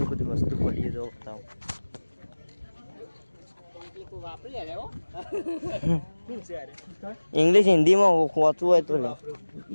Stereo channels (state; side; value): inverted; both; correlation -1.00